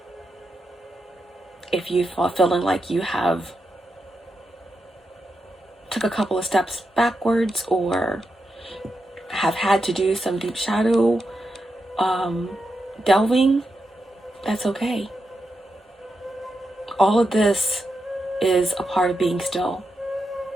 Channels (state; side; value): normal; both; correlation 0.86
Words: If you are feeling like you have took a couple of steps backwards or have had to do some deep shadow delving, that's okay. All of this is a part of being still.